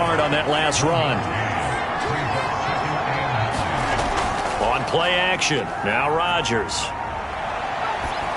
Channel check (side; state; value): both; identical; correlation 1.00